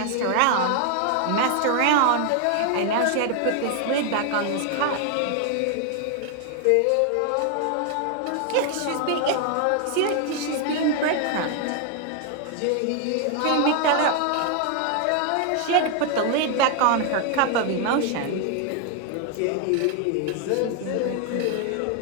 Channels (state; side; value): different; both; correlation 0.00